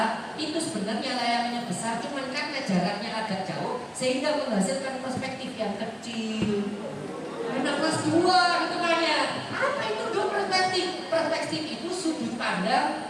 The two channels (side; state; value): both; identical; correlation 1.00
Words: Itu sebenarnya layangannya besar, cuman karena jaraknya agak jauh sehingga menghasilkan perspektif yang kecil." Anak kelas 2 gitu kan ya. Apa itu Duk perspektif? Perspektif itu sudut pandang